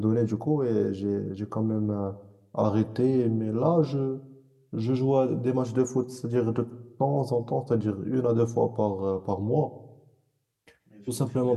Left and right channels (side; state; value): both; identical; correlation 1.00